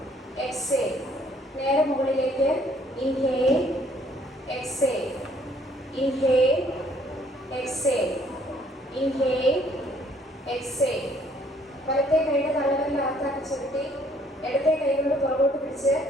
exhale. നേരെ മുകളിലേക്ക്. Inhale, exhale, inhale, exhale, inhale, exhale. വലത്തെ കൈയുടെ തള്ളവിരൽ അകത്താക്കി ചുരുട്ടി ഇടത്തെ കൈ കൊണ്ട് പുറകോട്ട് പിടിച്ച്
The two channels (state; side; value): normal; both; correlation 0.63